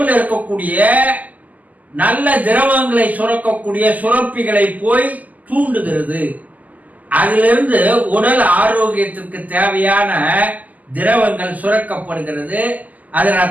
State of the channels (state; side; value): late; left; 0.079 ms